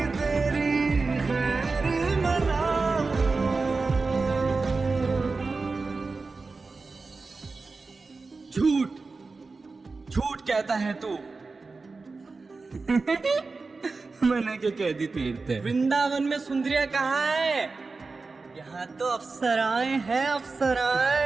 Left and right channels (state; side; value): quieter; left; 4.0 dB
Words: तेरी खैर मनाऊं। झूठ झूठ कहता है तू। मैंने क्या कह दी तीर्थ? वृंदावन में सुंदरिया कहाँ है? यहाँ तो अप्सराएं हैं,